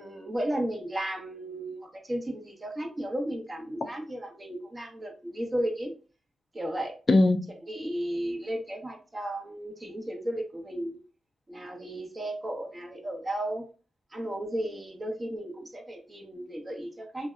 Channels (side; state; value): both; normal; correlation 0.93